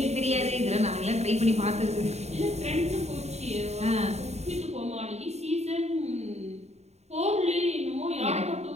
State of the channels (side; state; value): left; late; 0.32 ms